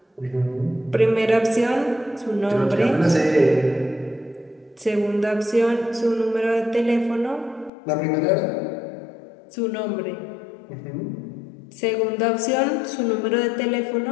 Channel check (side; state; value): right; drops out; at 7.7 s